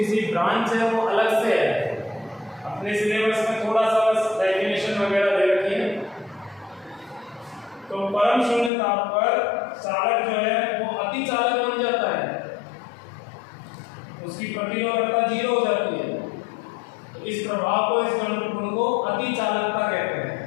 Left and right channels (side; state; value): right; drops out; at 8.7 s